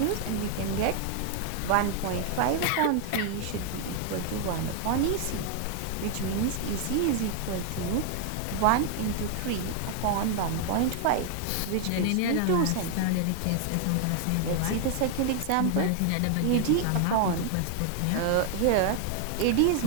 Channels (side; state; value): both; different; correlation 0.00